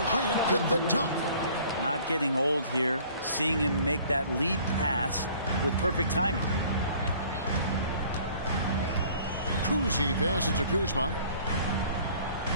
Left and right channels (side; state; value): both; inverted; correlation -0.53